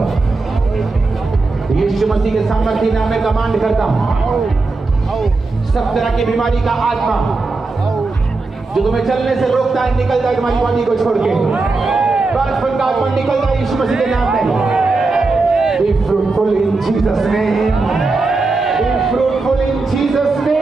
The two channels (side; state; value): left; quieter; 3.6 dB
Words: यीशु मसीह के सामर्थ्य नाम में कमांड करता हूं, सब तरह की बीमारी का आत्मा जो तुम्हें चलने से रोकता है निकल जाए तुम्हारी बॉडी को छोड़ के। बचपन का आत्मा निकल जाए यीशु मसीह के नाम में। Be fruitful in Jesus' name. Be fruitful in Jesus'